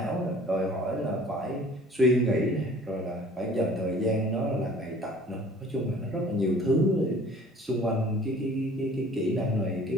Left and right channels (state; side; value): normal; both; correlation 0.51